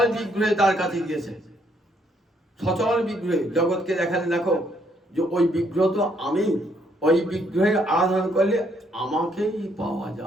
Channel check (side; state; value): both; normal; correlation 0.70